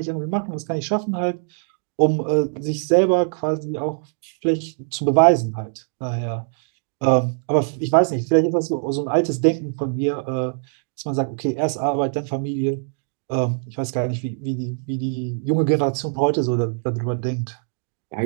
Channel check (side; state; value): left; silent; digital silence